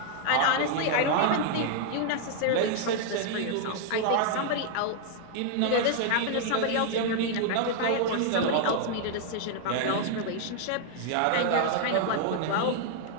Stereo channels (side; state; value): both; different; correlation 0.00